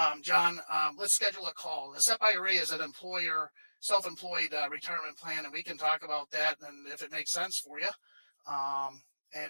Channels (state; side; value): inverted; both; correlation -1.00